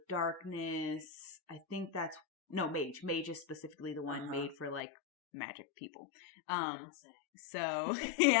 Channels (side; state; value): right; drops out; at 4.9 s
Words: Darkness. I think that's Mage. Mage is specifically the one made for like magic people. You don't say. So